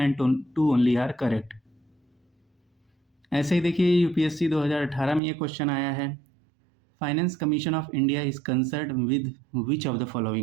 2 ओनली आर करेक्ट। ऐसे ही देखिए यूपीएससी 2018 में ये क्वेश्चन आया है। Finance commission of India is concerned with which of the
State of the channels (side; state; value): left; drops out; at 5.2 s